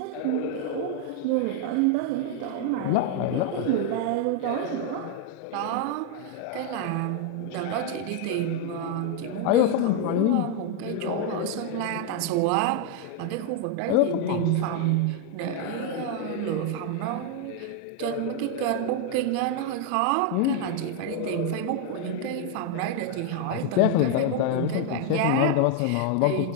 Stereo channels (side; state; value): both; different; correlation 0.01